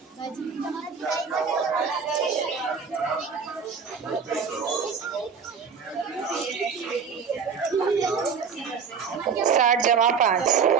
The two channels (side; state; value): left; quieter; 6.1 dB